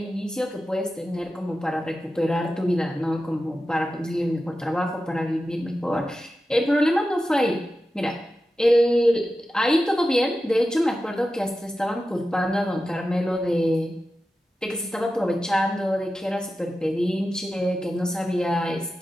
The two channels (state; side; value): normal; both; correlation 0.92